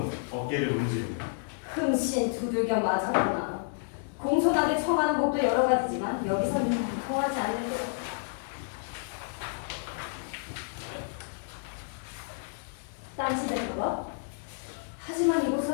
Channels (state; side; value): silent; right; digital silence